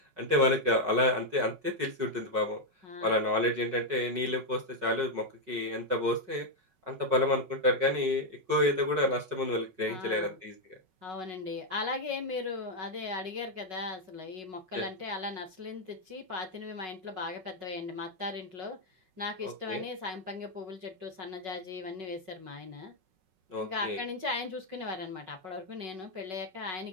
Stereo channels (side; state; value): left; late; 5.4 ms